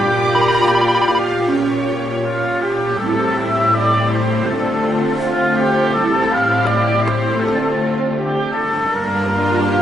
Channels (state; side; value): normal; both; correlation 0.81